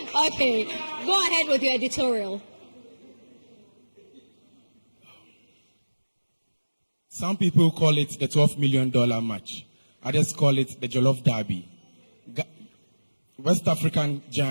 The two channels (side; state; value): both; inverted; correlation -1.00